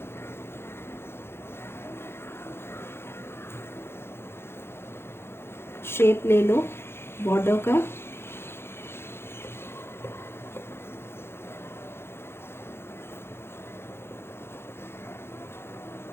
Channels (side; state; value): right; late; 0.12 ms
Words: Shape ले लो बॉर्डर का।